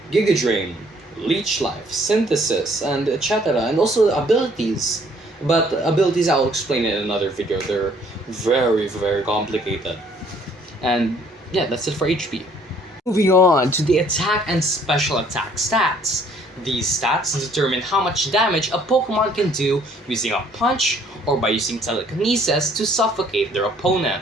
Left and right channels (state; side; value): normal; both; correlation 0.61